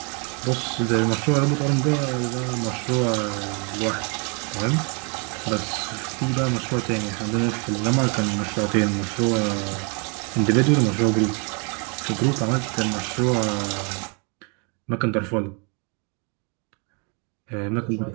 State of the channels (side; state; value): left; quieter; 34.6 dB